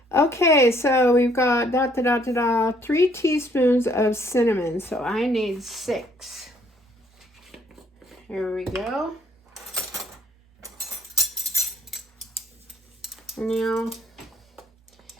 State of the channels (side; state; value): both; normal; correlation 0.65